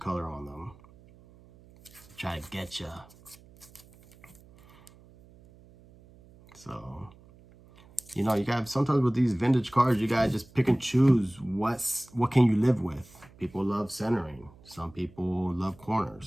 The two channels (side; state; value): right; noise; hum, 25 dB below the sound